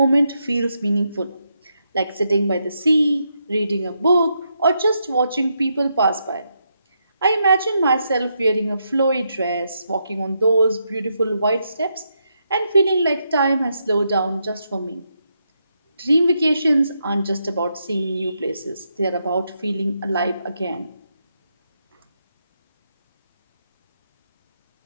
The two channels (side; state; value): both; inverted; correlation -0.81